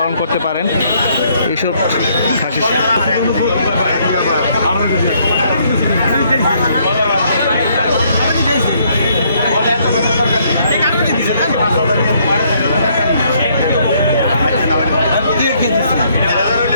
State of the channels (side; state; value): both; inverted; correlation -0.68